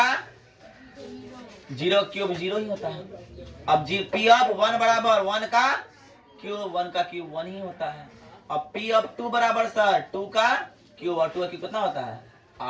0 क्यूब 0 ही होता है। अब P ऑफ 1 बराबर 1 का क्यूब, 1 का क्यूब 1 ही होता है। अब P ऑफ 2 बराबर सर 2 का क्यूब, और 2 का क्यूब कितना होता है,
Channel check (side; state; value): both; identical; correlation 1.00